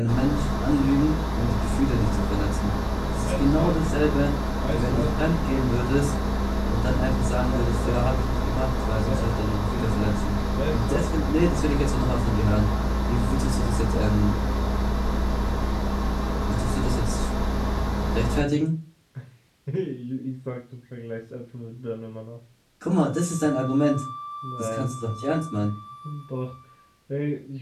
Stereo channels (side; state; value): both; identical; correlation 1.00